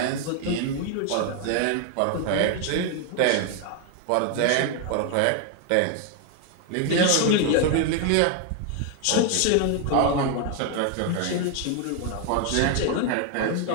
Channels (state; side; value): different; both; correlation 0.01